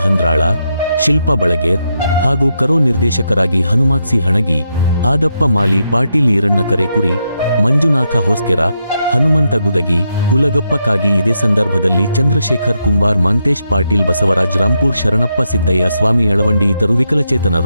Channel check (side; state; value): both; inverted; correlation -0.82